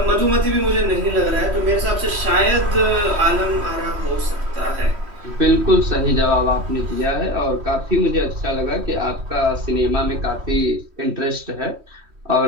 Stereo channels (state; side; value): late; left; 3.1 ms